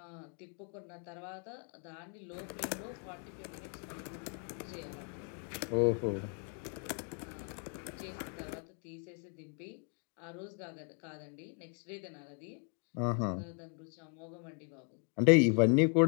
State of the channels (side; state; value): right; quieter; 39.2 dB